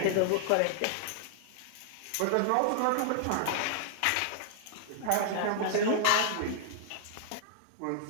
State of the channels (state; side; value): different; both; correlation -0.01